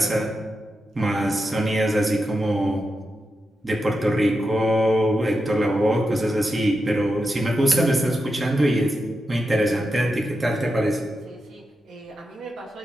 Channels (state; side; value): normal; both; correlation 0.88